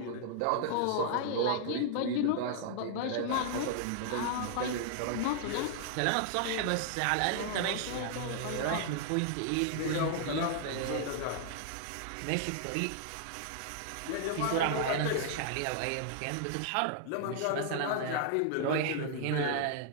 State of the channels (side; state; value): both; different; correlation -0.01